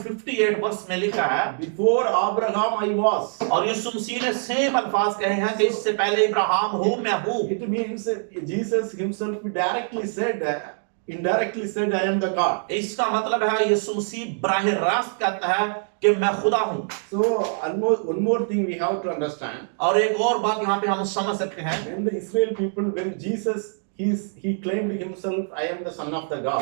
58 वर्ष में लिखा है, Before Abraham I was. और यीशु मसीह ने सेम अल्फाज कहे हैं कि इससे पहले इब्राहिम हूँ मैं हूँ। It means Jesus Himself directly said, indirectly said, I am the God. इसका मतलब है यीशु मसीह बराह रास्त कहता है कि मैं खुदा हूँ। So one more thing we have to understand. और एक और बात यहाँ पे हम समझ सकते हैं, When the Israel people, when Jesus he claimed himself, I am the son of the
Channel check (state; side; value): silent; left; digital silence